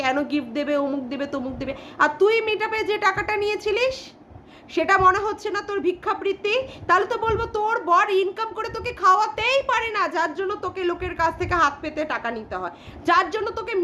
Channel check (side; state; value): both; identical; correlation 1.00